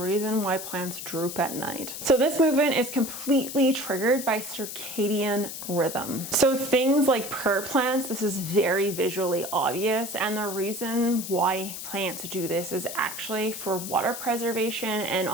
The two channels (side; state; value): left; noise; hiss, 8 dB below the sound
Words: why plants droop at night. So this movement is completely triggered by circadian rhythm. So things like prayer plants, this is very visually obvious, and the reason why plants do this is actually for water preservation and